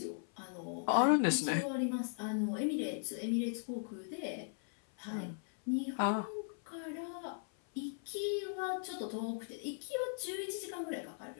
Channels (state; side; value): silent; right; 52 dB below the other